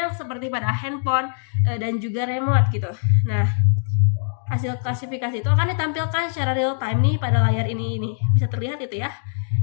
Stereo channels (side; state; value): right; silent; digital silence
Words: seperti pada handphone dan juga remote gitu. Nah, hasil klasifikasi itu akan ditampilkan secara real time nih pada layar ini bisa terlihat itu ya,